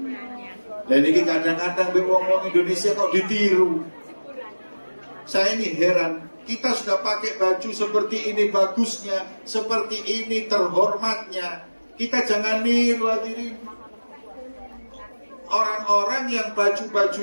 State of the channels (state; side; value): inverted; both; correlation -1.00